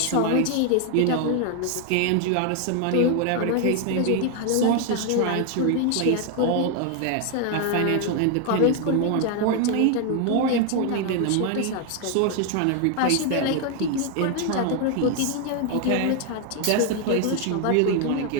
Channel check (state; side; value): different; both; correlation 0.01